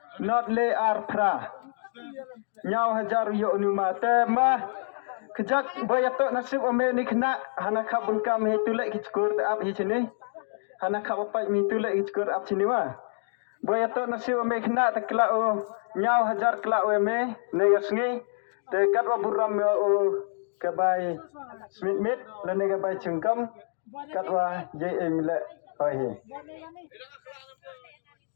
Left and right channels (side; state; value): right; silent; digital silence